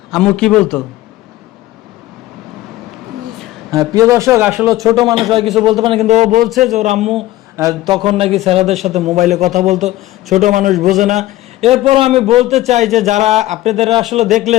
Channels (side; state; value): right; quieter; 16.1 dB